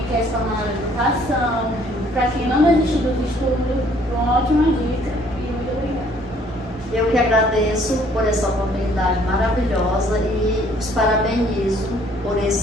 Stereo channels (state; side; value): normal; both; correlation 0.60